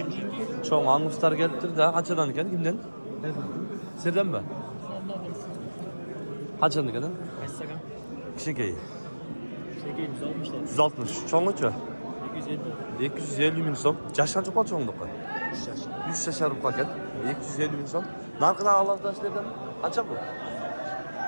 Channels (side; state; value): both; inverted; correlation -1.00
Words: Çoğun anguslar geliptir da qanchadan ekan kimden? Sizden mi? Qanchadan ekan? Kaçsakan? Kişikeyi. Şekeyi 160'lar. 160. Çoğunluçu? 250. 250 ming so'm. Jash qancha qoldi cho'nglikqa? 100 yashar ekan. 250 ming so'm. Narxini alohidalashlardan qancha bu?